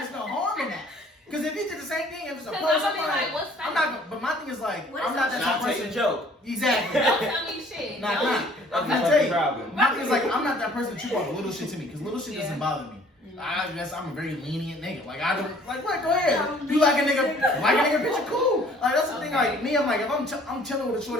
no harm in that. Because if he did the same thing, if it's a Cause post, I'm gonna be like, what's I'm that? not. But my thing is like, What I'm is not that? that type Not of take a person. joke. Exactly. Don't tell me shit. Nah, Don't. nah. That's I'm the gonna tell you. problem. My thing is like, I'm not that person that you want little shit to me. Because little shit Yeah. doesn't bother me. I guess I'm a very lenient nigga. Like I don't like what? Go ahead. You like a nigga picture? Cool. Like that's the thing. Like me, I'm like if I'm chilling with a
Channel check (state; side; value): normal; both; correlation 0.56